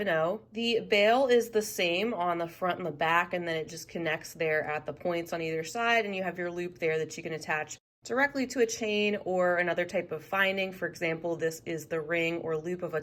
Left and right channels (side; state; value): both; identical; correlation 1.00